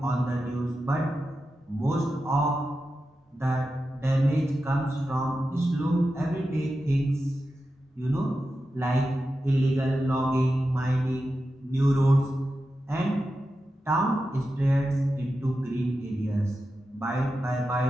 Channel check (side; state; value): both; normal; correlation 0.91